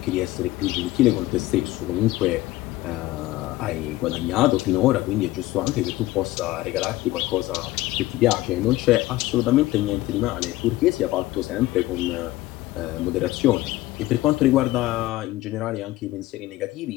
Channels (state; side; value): quieter; right; 17.3 dB